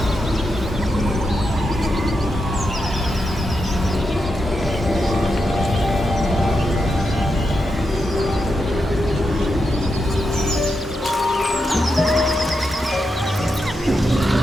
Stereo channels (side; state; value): both; normal; correlation 0.86